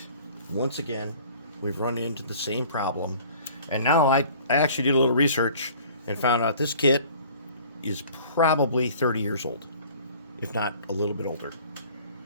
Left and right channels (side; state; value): both; inverted; correlation -0.49